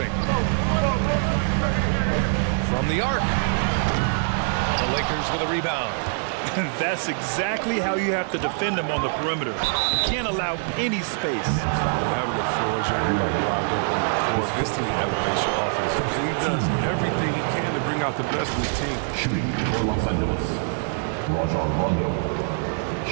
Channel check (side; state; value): left; silent; 63 dB below the other